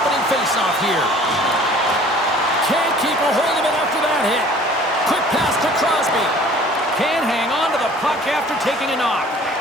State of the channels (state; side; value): normal; both; correlation 0.50